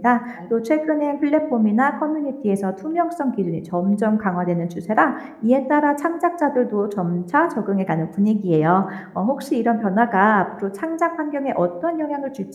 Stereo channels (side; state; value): both; identical; correlation 1.00